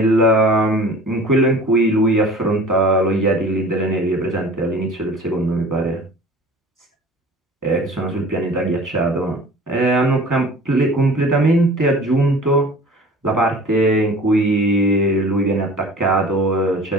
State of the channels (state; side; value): normal; both; correlation 0.43